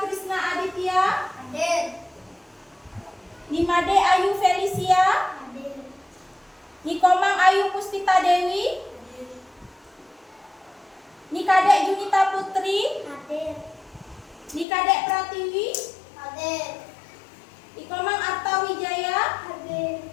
Aditya. Hadir. Nimade Ayu Felicia. Hadir. Nikomang Ayu Puspita Dewi. Nikade Junita Putri. Hadir. Nikade Pratiwi. Hadir. Ikomang Arta Wijaya. Hadir.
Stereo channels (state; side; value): drops out; right; at 14.7 s